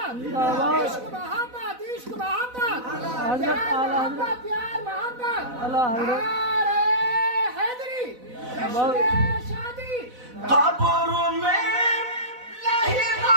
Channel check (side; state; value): left; late; 4.0 ms